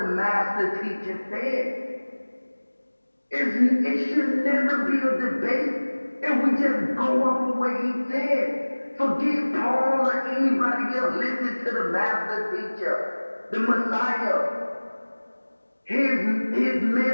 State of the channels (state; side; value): inverted; both; correlation -1.00